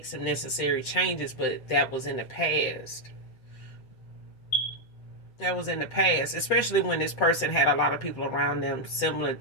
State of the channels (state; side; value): late; right; 7.7 ms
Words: some necessary changes. But that was in the past. That was in the past, especially when this person had a lot of people around them similar,